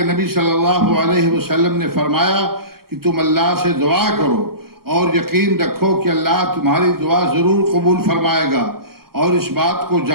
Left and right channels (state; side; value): late; left; 0.94 ms